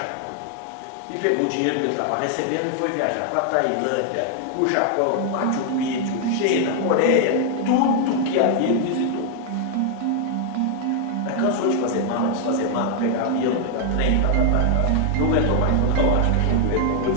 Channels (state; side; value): different; both; correlation 0.00